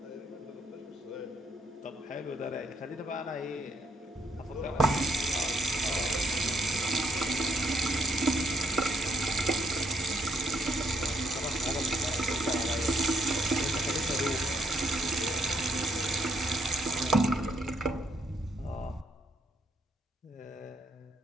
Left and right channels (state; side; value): normal; both; correlation 0.72